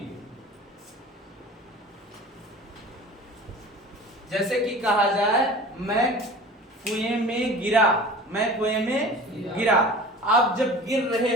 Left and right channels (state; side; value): normal; both; correlation 0.40